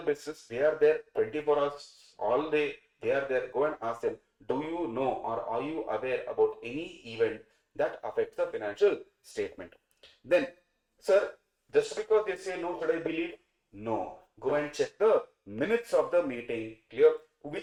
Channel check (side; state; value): both; identical; correlation 1.00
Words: business, they are there 24 hours all day, they are there. Go and ask them, do you know or are you aware about any event that affects the financial statement? Then Sir, just because they say no, should I believe? No. Go and check the minutes of the meeting. Clear?